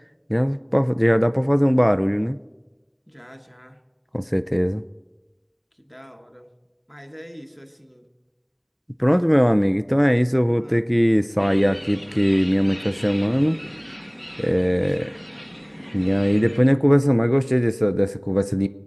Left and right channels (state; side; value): identical; both; correlation 1.00